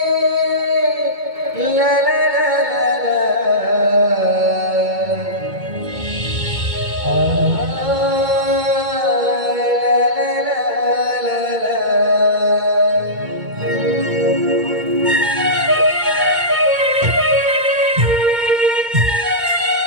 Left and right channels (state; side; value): late; left; 2.2 ms